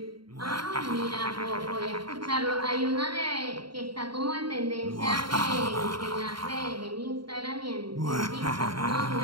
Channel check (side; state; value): left; late; 0.73 ms